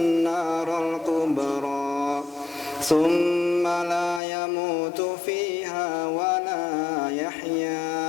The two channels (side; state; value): right; drops out; at 4.2 s